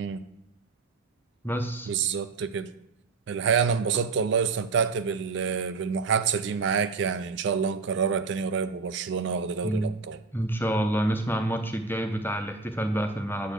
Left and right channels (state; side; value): quieter; left; 4.2 dB